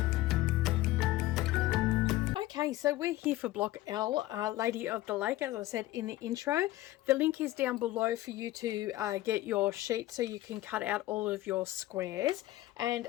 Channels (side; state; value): right; quieter; 16.4 dB